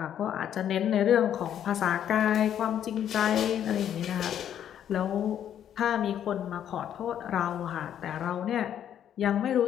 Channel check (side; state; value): right; quieter; 9.9 dB